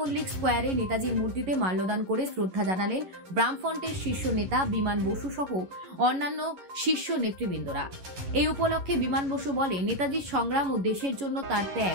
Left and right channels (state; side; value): late; left; 11 ms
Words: স্কোয়ারে নেতাজির মূর্তিতে মাল্যদান করে শ্রদ্ধা জানালেন বামফ্রন্টের শীর্ষ নেতা বিমান বসু সহ অন্যান্য শীর্ষ নেতৃবৃন্দরা। এই উপলক্ষে বিমান বসু বলে, নেতাজির সংগ্রাম ও দেশের জন্য তার